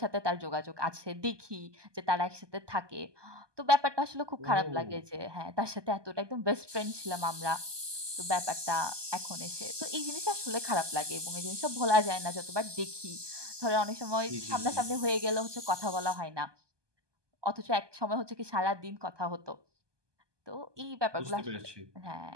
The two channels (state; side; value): late; left; 1.2 ms